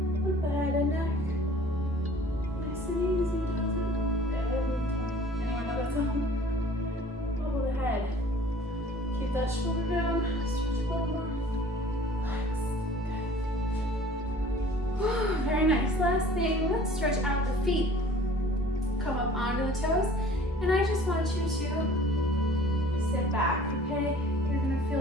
with the head and neck. Nice and easy, doesn't it? Every time. Anyone nice. Last thing, let's stretch out the feet. Come up onto the toes, and I just want you to sit back, okay? You're gonna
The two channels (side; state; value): both; normal; correlation 0.49